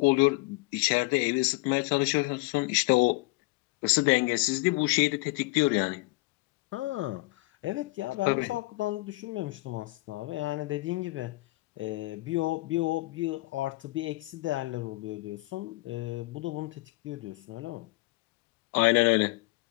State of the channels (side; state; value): right; quieter; 22.6 dB